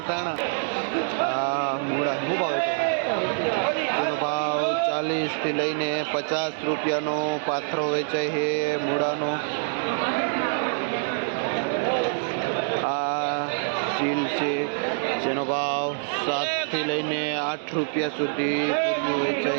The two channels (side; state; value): left; silent; digital silence